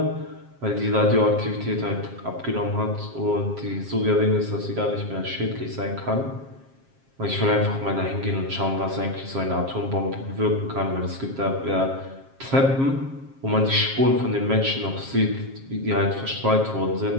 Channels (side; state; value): left; late; 7.4 ms